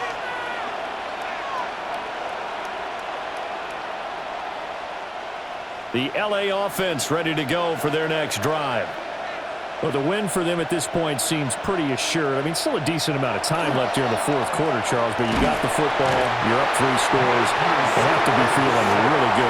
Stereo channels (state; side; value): identical; both; correlation 1.00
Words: The LA offense ready to go for their next drive. Well, the win for them at this point seems pretty assured. I mean, still a decent amount of time left here in the 4th quarter, Charles, but you got the football, you're up 3 scores. They have to be feeling really good